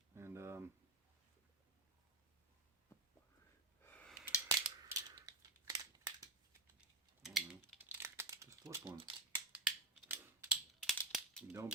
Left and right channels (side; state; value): left; quieter; 3.2 dB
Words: And I don't know, just flip one. Don't